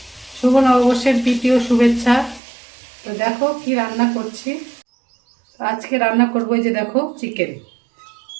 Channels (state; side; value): drops out; left; at 2.4 s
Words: শুভ নববর্ষের প্রীতীয় শুভেচ্ছা। তো দেখো কি রান্না করছি। আজকে রান্না করবো এই যে দেখো চিকেন,